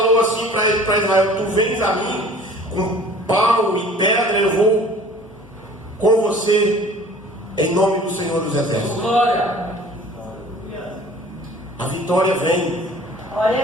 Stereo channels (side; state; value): both; normal; correlation 0.48